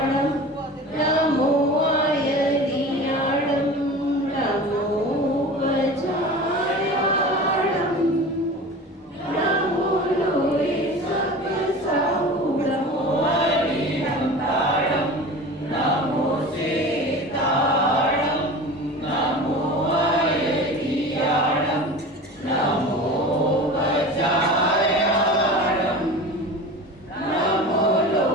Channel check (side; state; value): both; normal; correlation 0.35